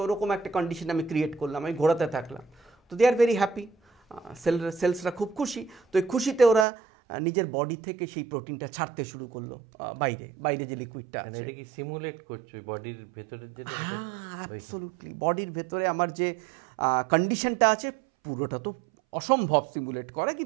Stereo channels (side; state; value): left; drops out; at 6.7 s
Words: ওরকম একটা কন্ডিশন আমি ক্রিয়েট করলাম, আমি ঘোরাতে থাকলাম, তো দে আর ভেরি হ্যাপি, সেলসরা খুব খুশি। তো এই খুশিতে ওরা নিজের বডি থেকে সেই প্রোটিনটা ছাড়তে শুরু করলো বাইরে যে লিকুইডটা, এটা কি সিমুলেট করছো বডির ভেতরে, যেটা অ্যাবসলিউটলি বডির ভেতরে আমার যে কন্ডিশনটা আছে, পুরোটা তো অসম্ভব সিমুলেট করা,